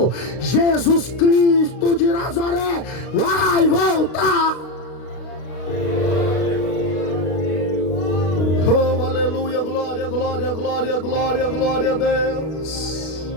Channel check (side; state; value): right; late; 32 ms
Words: Jesus Cristo de Nazaré vai voltar. Oh, aleluia, glória, glória, glória, glória, glória a Deus.